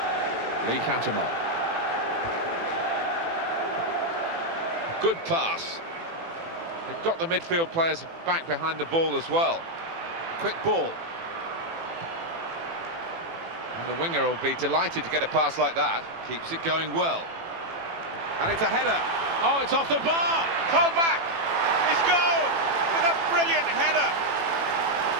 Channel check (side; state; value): left; late; 18 ms